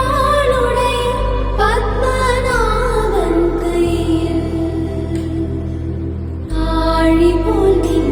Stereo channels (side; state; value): both; identical; correlation 1.00